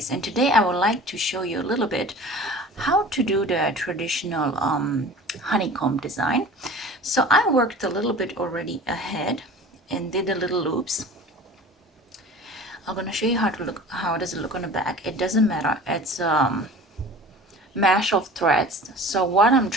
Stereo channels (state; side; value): normal; both; correlation 0.41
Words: and today I would like to show you a little bit how to do the traditional honeycomb design. So I worked a little bit already ahead and did the little loops. I'm going to show you how does it look on the back. It doesn't matter, it's mesh of threads. So what I'm